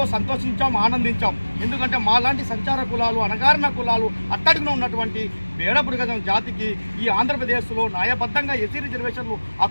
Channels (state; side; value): inverted; both; correlation -1.00